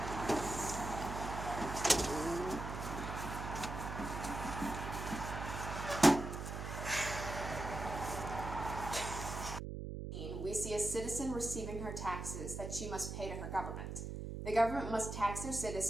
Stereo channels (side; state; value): right; noise; hum, 5 dB below the sound